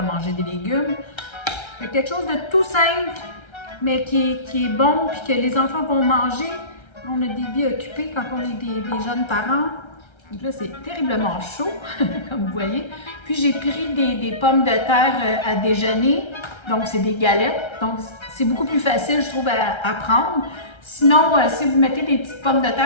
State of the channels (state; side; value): late; right; 1.3 ms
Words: manger des légumes. C'est quelque chose de tout simple, mais qui est bon, puis que les enfants vont manger. On a des vies occupées quand on est des jeunes parents. Donc là, c'est terriblement chaud, comme vous voyez. Puis j'ai pris des pommes de terre à déjeuner, donc c'est des galettes. Donc c'est beaucoup plus facile, je trouve, à prendre. Sinon, si vous mettez des petites pommes de